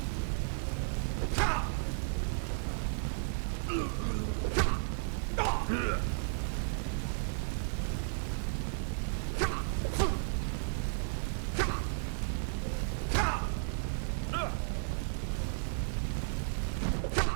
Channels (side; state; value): left; silent; digital silence